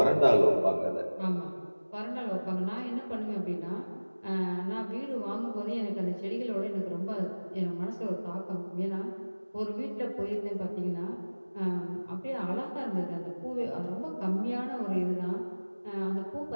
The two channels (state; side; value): inverted; both; correlation -1.00